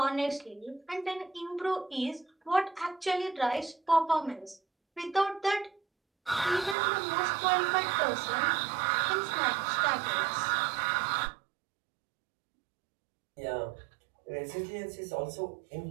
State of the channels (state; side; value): drops out; left; at 6.8 s